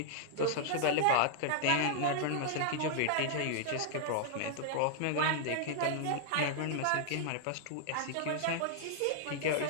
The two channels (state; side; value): different; both; correlation -0.01